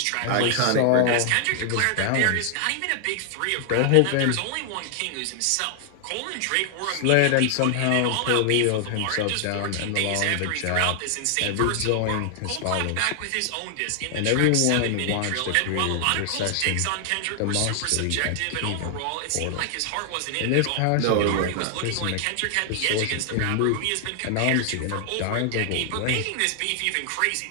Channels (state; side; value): different; both; correlation 0.00